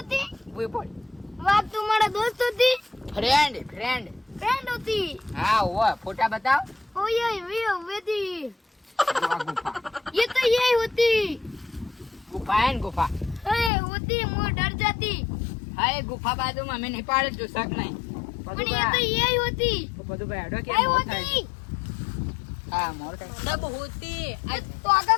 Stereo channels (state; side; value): drops out; right; at 13.7 s